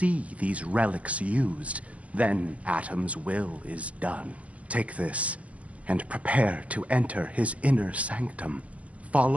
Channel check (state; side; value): late; left; 0.065 ms